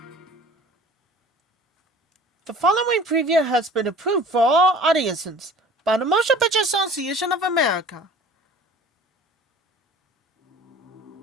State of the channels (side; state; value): both; normal; correlation 0.46